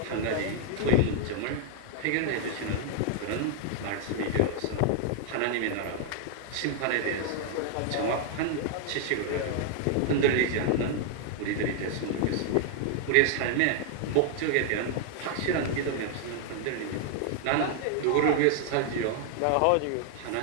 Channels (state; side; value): different; both; correlation 0.00